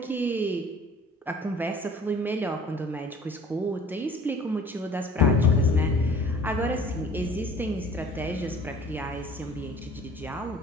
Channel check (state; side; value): normal; both; correlation 0.50